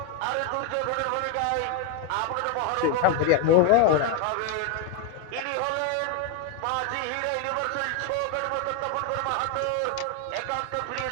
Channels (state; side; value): different; both; correlation 0.01